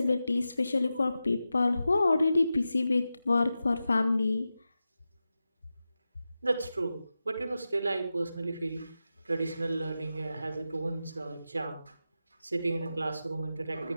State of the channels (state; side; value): inverted; both; correlation -0.92